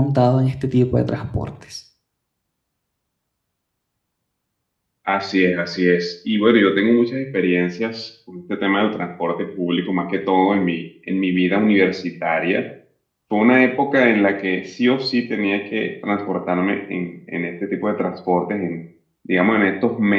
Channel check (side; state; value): both; identical; correlation 1.00